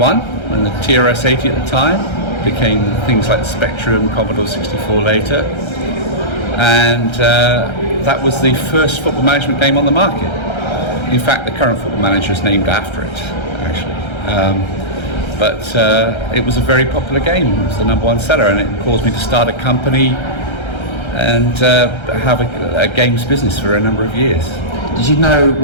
and the TRS-80 at the time. Became things like the Spectrum, Commodore 64 later, and that was the first football management game on the market. In fact, the current football manager is named after it, actually. But it was a very popular game. It was the #1 seller, and it caused me to start a company and have a games business for a number of years. Did you know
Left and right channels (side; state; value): right; late; 1.3 ms